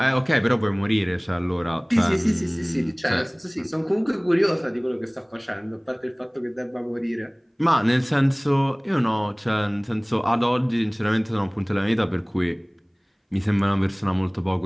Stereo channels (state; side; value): identical; both; correlation 1.00